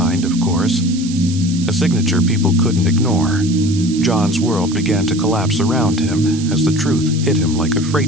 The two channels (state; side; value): noise; right; hiss, 13 dB below the sound